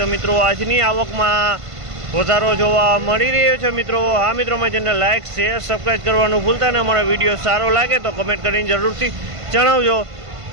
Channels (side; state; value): left; late; 1.5 ms